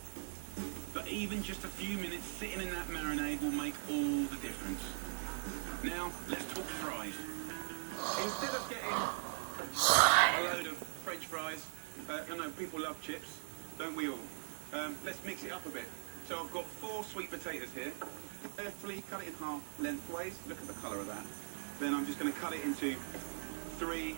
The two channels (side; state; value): left; silent; digital silence